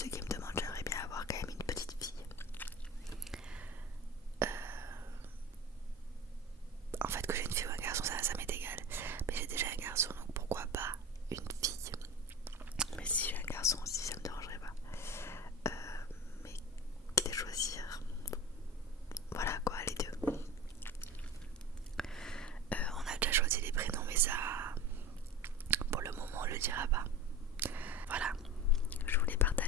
qui me demandent, j'aimerais bien avoir quand même une petite fille. En fait que j'ai une fille ou un garçon ça m'est égal. Mais j'ai déjà un garçon donc pourquoi pas une fille. Mais si j'ai un garçon aussi ça me dérangerait pas. Mais quitte à choisir. Voilà quoi, les deux. On a déjà choisi les prénoms mais ça pour le moment on le dira pas. Voilà, je voulais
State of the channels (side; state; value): both; normal; correlation 0.32